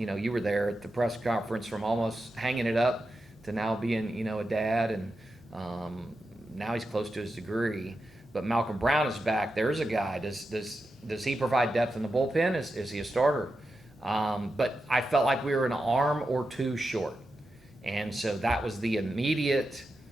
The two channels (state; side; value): normal; both; correlation 0.89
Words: were there at the press conference, from almost hanging it up to now being a dad, and now he's close to his degree. But Malcolm Brown is back. There's a guy. Does he provide depth in the bullpen? Is he a starter? But I felt like we were an arm or 2 short. And so that was the immediate